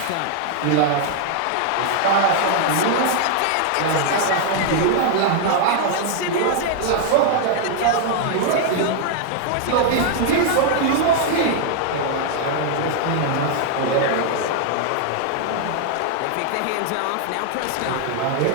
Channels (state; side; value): different; both; correlation 0.00